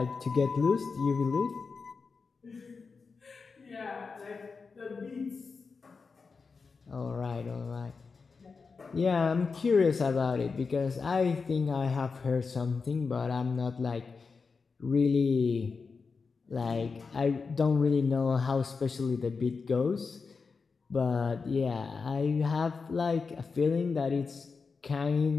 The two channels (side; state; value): right; quieter; 4.8 dB